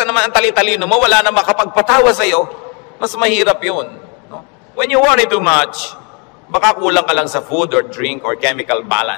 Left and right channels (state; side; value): quieter; right; 33.9 dB